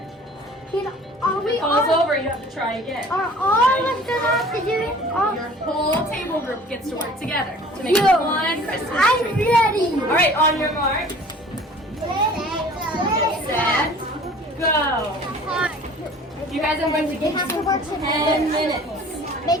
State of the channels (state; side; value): normal; both; correlation 0.48